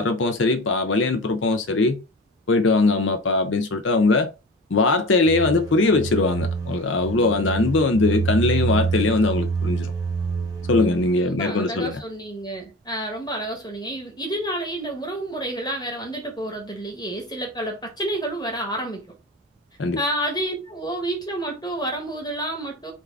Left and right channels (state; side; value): normal; both; correlation 0.34